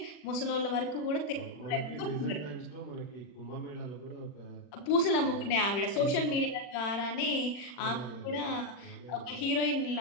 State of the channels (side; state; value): right; late; 40 ms